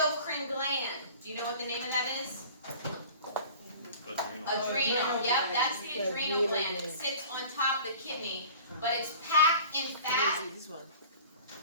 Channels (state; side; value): inverted; both; correlation -0.43